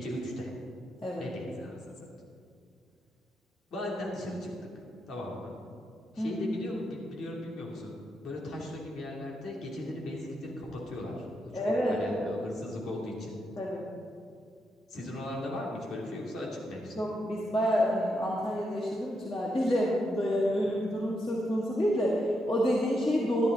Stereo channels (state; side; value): normal; both; correlation 0.82